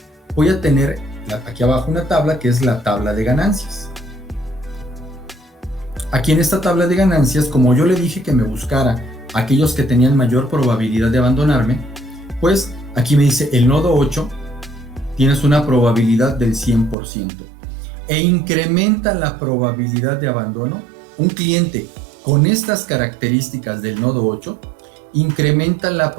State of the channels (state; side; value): drops out; left; at 16.9 s